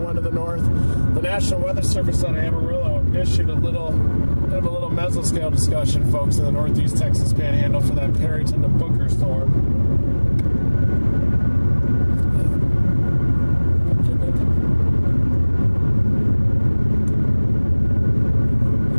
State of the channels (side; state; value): both; inverted; correlation -1.00